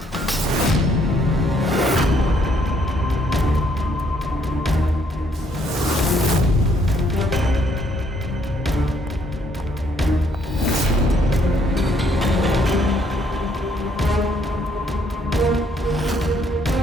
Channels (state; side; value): normal; both; correlation 0.68